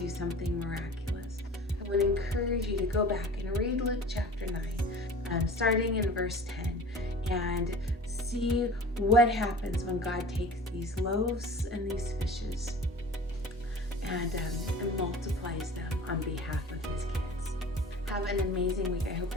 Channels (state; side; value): normal; both; correlation 0.41